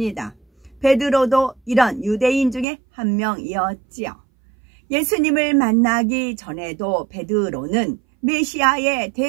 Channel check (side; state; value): left; drops out; at 2.7 s